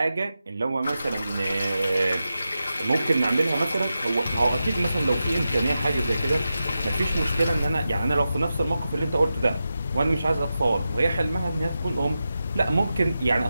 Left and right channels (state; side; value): inverted; both; correlation -0.90